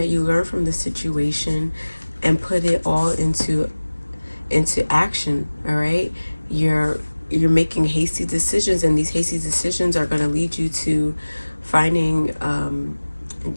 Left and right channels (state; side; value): inverted; both; correlation -1.00